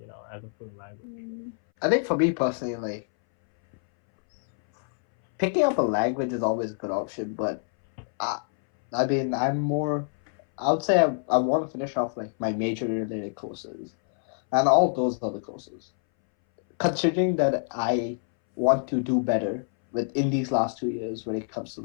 as a fluent language? I think for me personally, like picking up a language is always a good option, but I mean, I would say I want to finish off like my major related courses, and all those other courses. Considering that I want to do better in these last 2 years when it comes to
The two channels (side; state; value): right; silent; 61 dB below the other